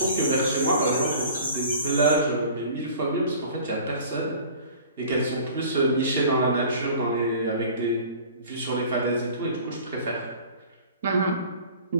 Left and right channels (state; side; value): inverted; both; correlation -0.45